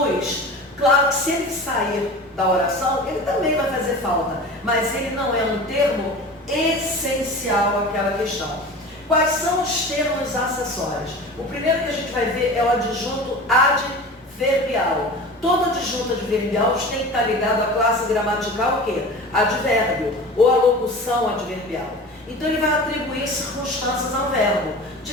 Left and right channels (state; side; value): normal; both; correlation 0.35